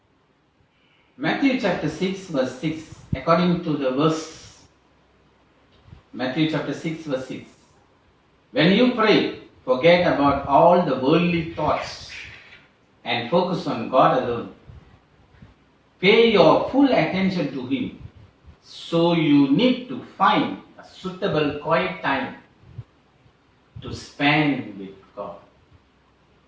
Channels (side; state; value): both; identical; correlation 1.00